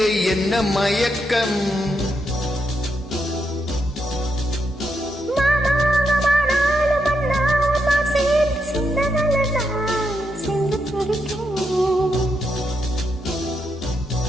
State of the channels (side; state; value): both; normal; correlation 0.81